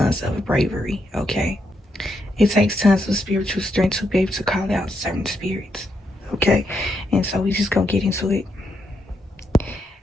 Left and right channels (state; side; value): normal; both; correlation 0.80